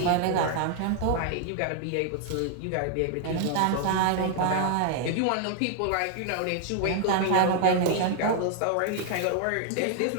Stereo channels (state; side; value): different; both; correlation 0.00